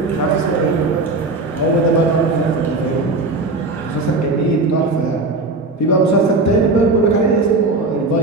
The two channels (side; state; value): left; quieter; 3.3 dB